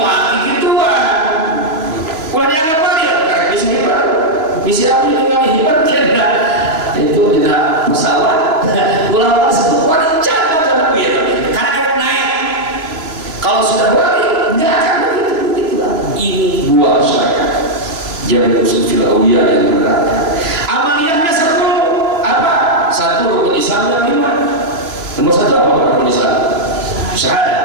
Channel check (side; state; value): left; late; 3.0 ms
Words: gituan. Ulah dianggap wali, karena bisa hebat. Bisa apa dengan hebat tidak? Itu tidak masalah. Ulama sebut wali jangan gitu. Karena dia naik. Kalau sudah wali, nggak akan begitu. Ini buah syariat. Jangan usul fil awliya yang benar. Amaliyahnya 10. Apa? 1 rukun Islam yang 5. Nomor 1 apa rukun Islam?